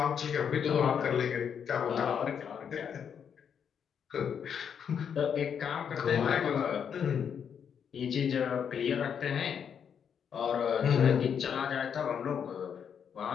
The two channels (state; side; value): quieter; right; 7.7 dB